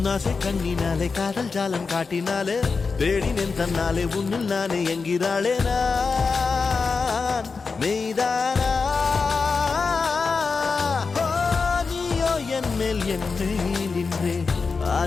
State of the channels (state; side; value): quieter; right; 4.7 dB